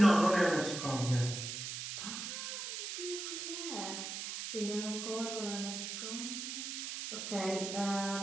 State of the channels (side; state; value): right; noise; hiss, 5 dB below the sound